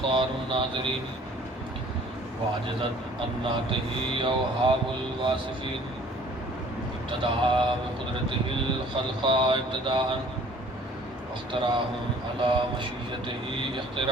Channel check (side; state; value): both; normal; correlation 0.52